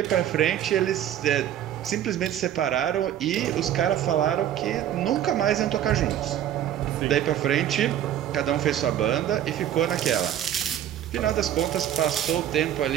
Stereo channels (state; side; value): quieter; left; 11.0 dB